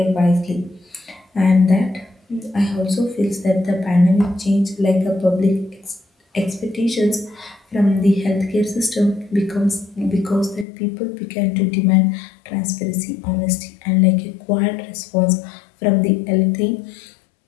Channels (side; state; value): right; drops out; at 10.7 s